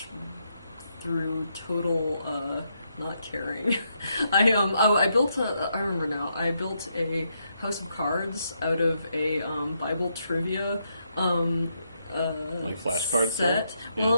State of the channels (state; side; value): inverted; both; correlation -0.79